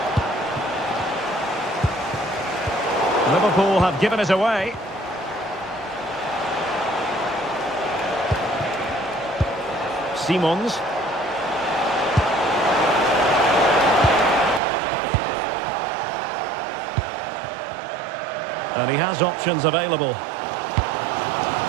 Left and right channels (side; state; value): left; drops out; at 14.6 s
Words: Liverpool have given it away. Simons. And he has options available.